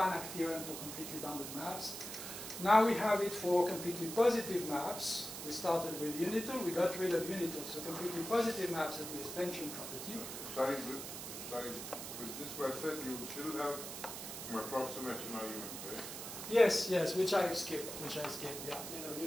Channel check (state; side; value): noise; right; hiss, 8 dB below the sound